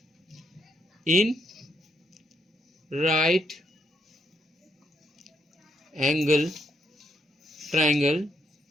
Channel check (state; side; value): normal; both; correlation 0.76